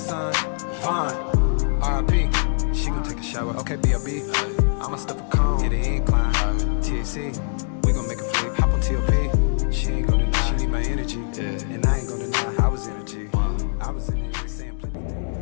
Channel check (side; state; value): right; silent; digital silence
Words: Vaughn, R.I.P. She gon' take a shower, okay, B.O.B. I'ma stuff a cone, hit the incline. THC, we gon' make a flick. Hop on T.O.P. She ain't gon' deny, she need my energy. And I ain't gon' deny, I was energy. I was in it, saying plenty.